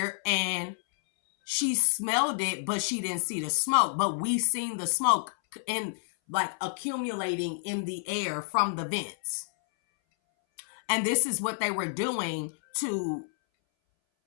and she smelled it, but she didn't see the smoke. But we seen the smoke in like accumulating in the air from the vents. And this is what they were doing to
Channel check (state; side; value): silent; right; 58 dB below the other